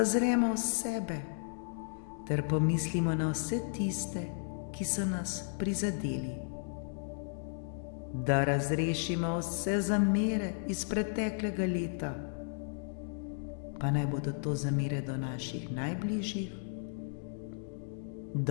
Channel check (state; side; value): silent; right; digital silence